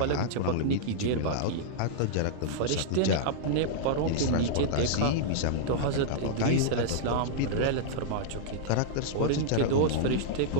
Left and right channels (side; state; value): both; different; correlation -0.02